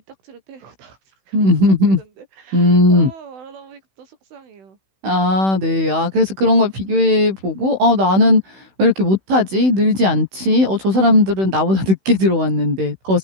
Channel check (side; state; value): left; late; 16 ms